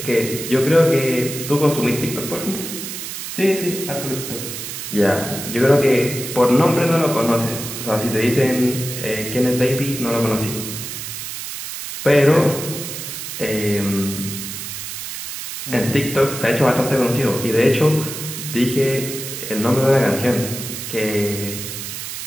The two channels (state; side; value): noise; right; hiss, 7 dB below the sound